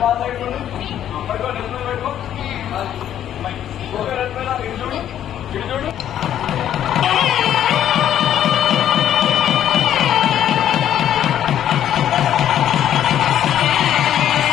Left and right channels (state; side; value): quieter; right; 10.7 dB